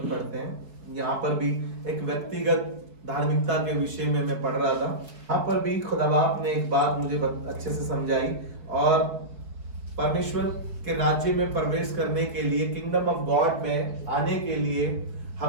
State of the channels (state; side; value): late; left; 4.7 ms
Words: पढ़ते हैं। यहाँ पर भी एक व्यक्तिगत धार्मिकता के विषय में मैं पढ़ रहा था। यहाँ पर भी खुदा बाप ने एक बात मुझे अच्छे से समझाई, और परमेश्वर के राज्य में प्रवेश करने के लिए, किंगडम ऑफ गॉड में आने के लिए